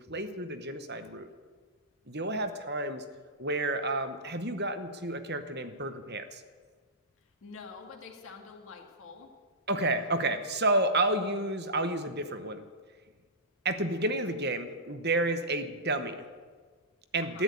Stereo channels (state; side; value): normal; both; correlation -0.16